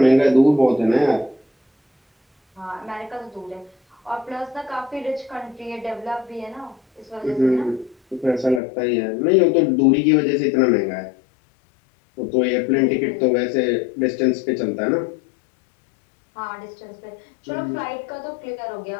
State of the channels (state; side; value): drops out; right; at 8.6 s